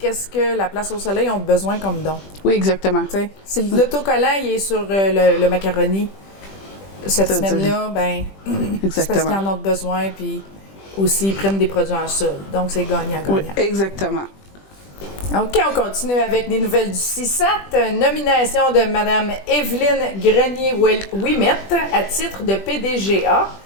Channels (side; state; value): right; late; 20 ms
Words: que la Place au Soleil ont besoin comme don. Oui, exactement. T'sais, si l'autocollant il est sur le macaroni, cette semaine-là, ben, c'est parce qu'ils en ont besoin, puis aussi ils prennent des produits en solde. Donc, c'est gagnant-gagnant. Oui, exactement. OK, on continue avec des nouvelles du CISAT. Nomination de Mme Evelyne Grenier-Ouimet à titre de PDGA